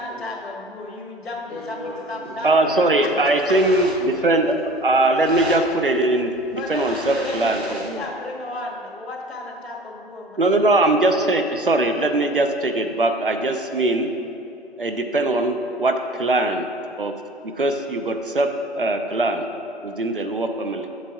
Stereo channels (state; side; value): normal; both; correlation 0.45